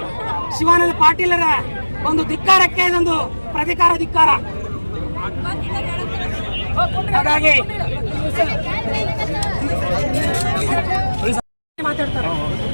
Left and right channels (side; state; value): both; inverted; correlation -1.00